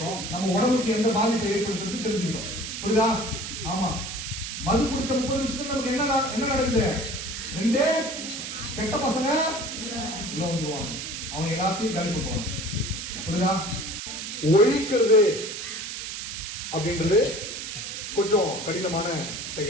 நம்ம உடம்புக்கு எந்த பாதிப்பை ஏற்படுத்துறது தெரிஞ்சுக்கிட்டோம். புரியுதா? ஆமா. மது குடிச்ச 30 நிமிஷத்துல நமக்கு என்ன நடக்குது? ரெண்டே கெட்ட பசங்க உள்ள வந்துருவாங்க, அவங்க எல்லாத்தையும் காலி பண்ணுவாங்க. புரியுதா? ஒழிக்கிறது அப்படின்றது கொஞ்சம் கடினமான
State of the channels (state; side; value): noise; right; hiss, 6 dB below the sound